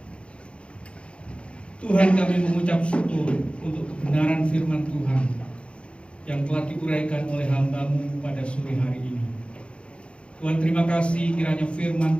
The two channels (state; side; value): late; right; 0.058 ms